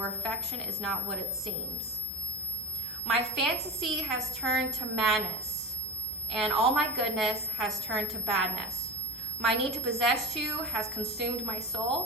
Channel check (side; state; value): both; normal; correlation 0.29